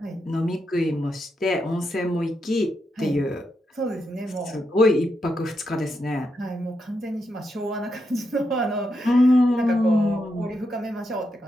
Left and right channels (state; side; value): normal; both; correlation 0.83